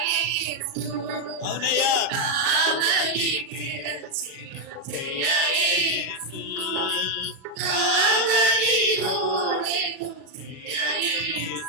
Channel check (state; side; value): late; left; 36 ms